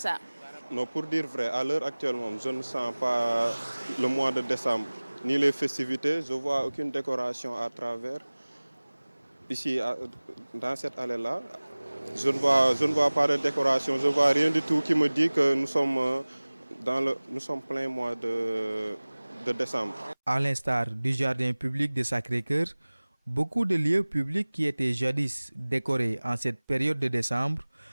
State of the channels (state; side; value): inverted; both; correlation -1.00